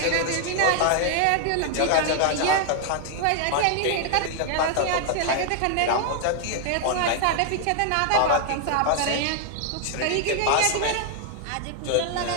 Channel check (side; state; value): both; different; correlation 0.00